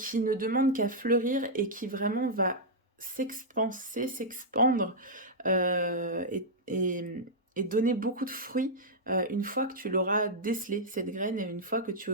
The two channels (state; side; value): normal; both; correlation -0.07